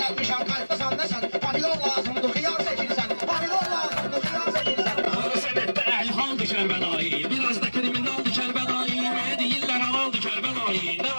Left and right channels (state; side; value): inverted; both; correlation -1.00